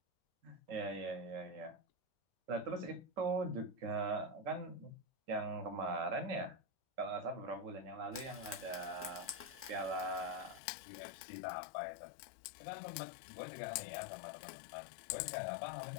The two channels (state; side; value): drops out; right; at 10.6 s